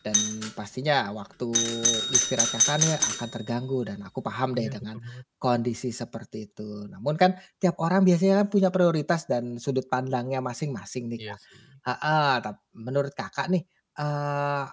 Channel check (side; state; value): both; identical; correlation 1.00